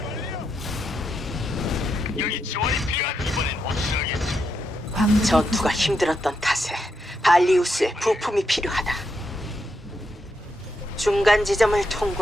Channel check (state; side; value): normal; both; correlation 0.82